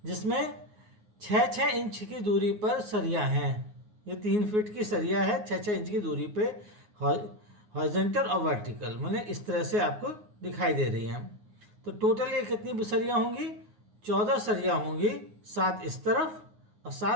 जिसमें 6 इंच की दूरी पर सरिया हैं। ये 3 फीट की सरिया है 6 इंच की दूरी पे, हॉरिजॉन्टल और वर्टिकल, माने इस तरह से आपको दिखाई दे रही है। तो टोटल ये कितनी सरिया होंगी? 14 सरिया होंगी, 7 इस तरफ और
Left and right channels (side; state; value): left; late; 9.5 ms